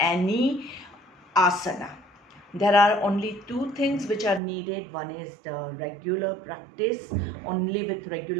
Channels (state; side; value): drops out; left; at 4.4 s